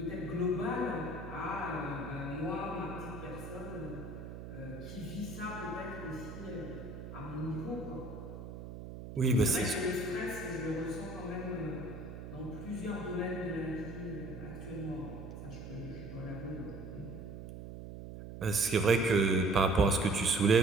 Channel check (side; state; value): right; noise; hum, 10 dB below the sound